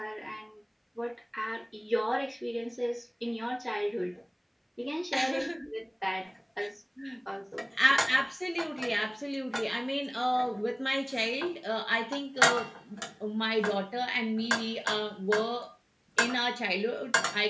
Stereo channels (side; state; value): both; identical; correlation 1.00